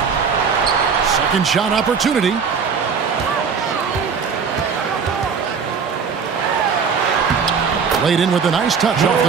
Second shot opportunity. Laid in with a nice touch off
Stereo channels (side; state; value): left; quieter; 6.0 dB